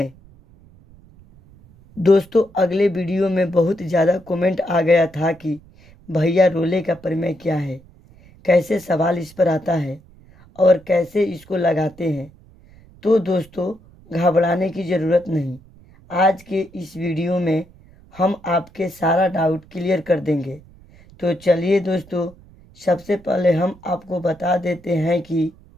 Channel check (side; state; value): right; noise; rumble, 25 dB below the sound